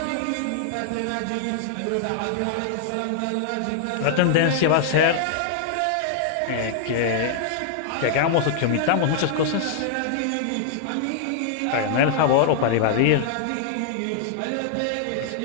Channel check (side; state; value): both; different; correlation -0.01